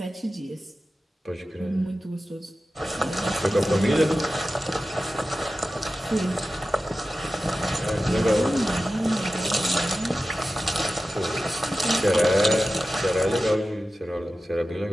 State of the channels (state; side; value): normal; both; correlation 0.94